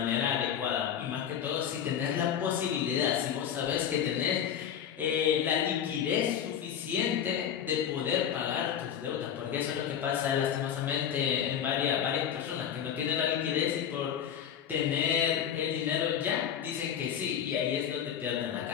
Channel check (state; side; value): quieter; right; 9.0 dB